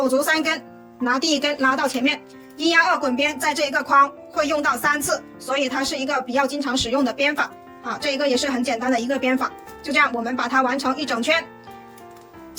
足3根，拿第1根拉到前面。1压2滚边在这一个框会用到3次，所以它是一个比较经常使用的编法。好，这一个也是很简单的一个编法。就这样，我们把它完成一整圈，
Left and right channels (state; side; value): identical; both; correlation 1.00